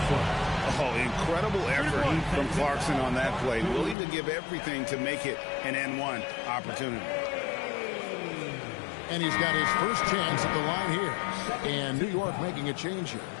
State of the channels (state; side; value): drops out; right; at 4.0 s